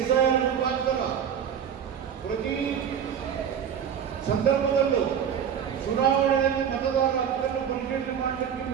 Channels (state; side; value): quieter; left; 8.3 dB